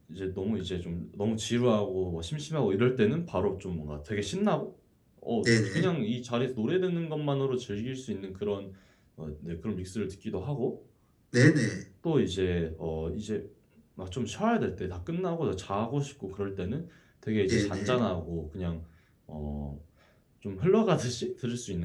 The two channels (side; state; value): both; identical; correlation 1.00